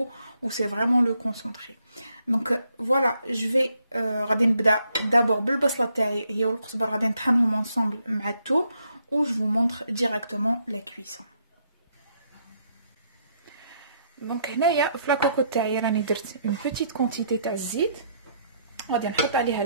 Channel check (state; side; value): inverted; both; correlation -0.73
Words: ou c'est vraiment le concentré. Donc voilà, je vais غادي نبدا d'abord بالبصله تاعي هي والقزبر, غادي نطحنهم ensemble مع الثوم, ou je vous montre directement la cuisson. Donc هنايا في لاكوكو تاعي راني درت une petite quantité تاع الزيت, غادي نحط عليها